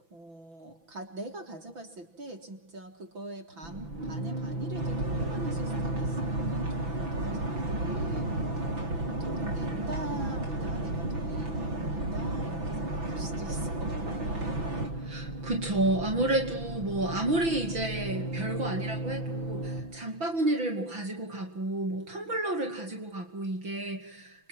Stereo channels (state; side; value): late; left; 6.0 ms